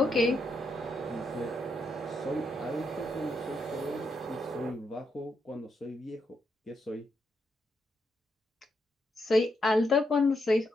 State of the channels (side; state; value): both; normal; correlation 0.80